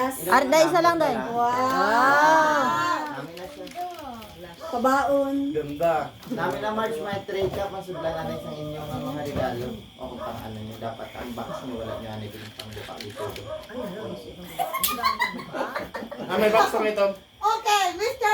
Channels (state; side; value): identical; both; correlation 1.00